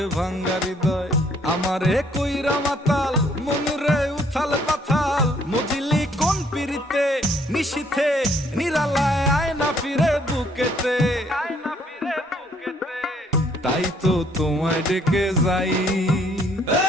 ভাঙ্গা হৃদয়। আমারে কইরা মাতাল মনুরে উথাল পাথাল, মজিলি কোন পিরিতে নিশিথে নিরালায় আয় না ফিরে বুকেতে। তাই তো তোমায় ডেকে যাই,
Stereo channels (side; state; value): both; normal; correlation 0.65